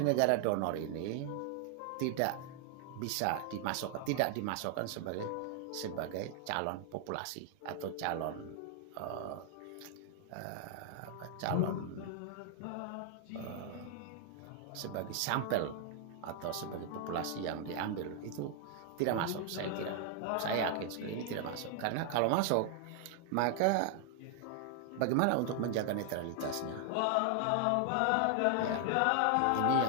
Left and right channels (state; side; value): different; both; correlation 0.00